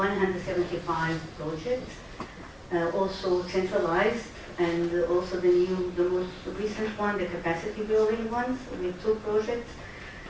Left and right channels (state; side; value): identical; both; correlation 1.00